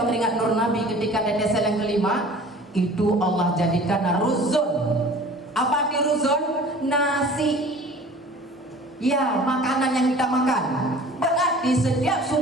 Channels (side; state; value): both; normal; correlation 0.45